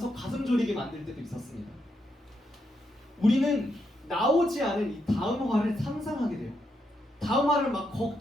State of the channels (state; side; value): normal; both; correlation 0.81